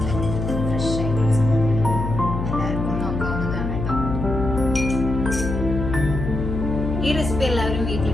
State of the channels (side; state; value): left; noise; hum, 4 dB below the sound